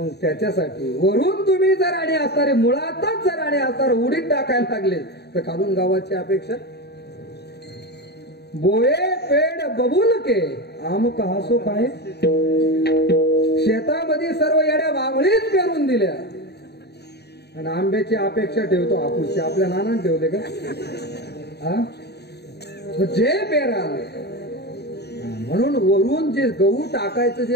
त्याच्यासाठी वरून तुम्ही जर आणि असणारे, मुळातच जर आणि असणार उडीद टाकायला लागले तर खालून गावाची अपेक्षा. बोये पेड बबूल के आम कहासो काय, शेतामध्ये सर्व येड्या वावळीच पेरून दिल्या आणि आंब्याची अपेक्षा ठेवतो हापूसची. आपल्या नानाने ठेवले का? जे पेराल. म्हणून वरून जे गहू टाकायचं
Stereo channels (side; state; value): right; late; 0.48 ms